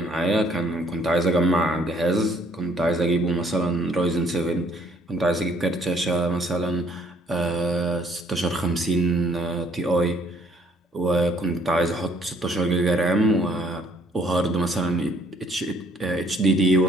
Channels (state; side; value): normal; both; correlation 0.64